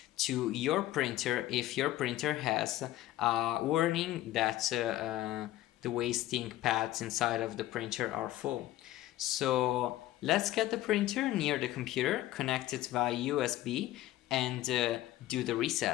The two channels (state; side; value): quieter; right; 15.0 dB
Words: to your printer if your printer has a warning that the waste ink pads inside of the printer are full. So let's get the printer near the computer, connect it via USB, and do the